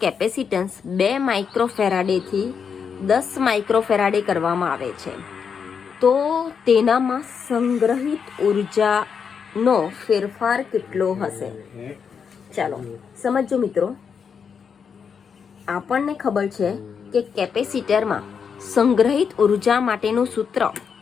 કેપેસિટન્સ 2 માઇક્રોફેરાડેથી 10 માઇક્રોફેરાડે કરવામાં આવે છે, તો તેનામાં સંગ્રહિત ઉર્જાનો ફેરફાર કેટલો હશે? ચાલો સમજો મિત્રો. આપણને ખબર છે કે કેપેસિટરમાં સંગ્રહિત ઉર્જા માટેનું સૂત્ર,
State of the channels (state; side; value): quieter; right; 6.6 dB